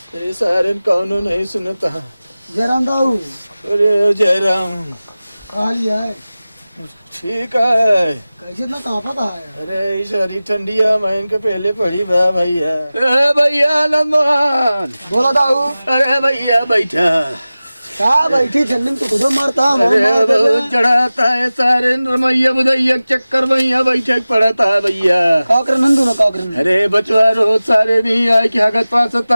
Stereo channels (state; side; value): inverted; both; correlation -0.97